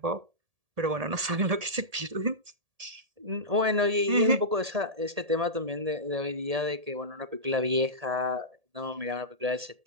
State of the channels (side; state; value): left; late; 1.7 ms